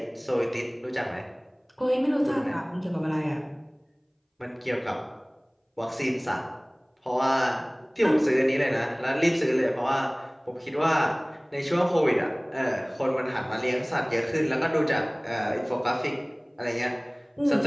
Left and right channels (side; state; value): both; identical; correlation 1.00